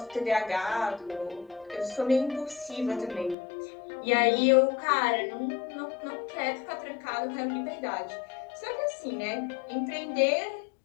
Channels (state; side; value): drops out; right; at 3.4 s